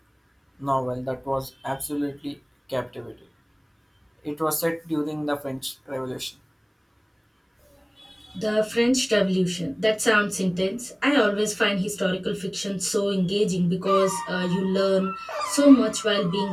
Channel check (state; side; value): identical; both; correlation 1.00